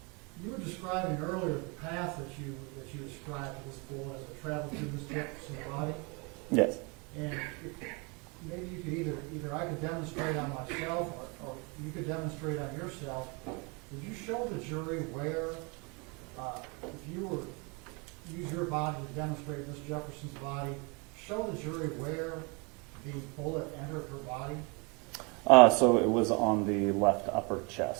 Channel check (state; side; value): quieter; left; 30.8 dB